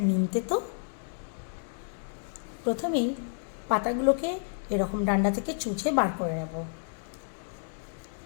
নিম তেতো। প্রথমেই পাতাগুলোকে এরকম ডান্ডা থেকে চুচে বার করে নেব।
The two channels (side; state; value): right; silent; digital silence